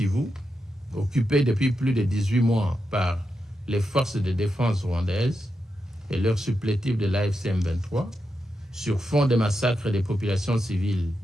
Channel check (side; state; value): both; normal; correlation 0.87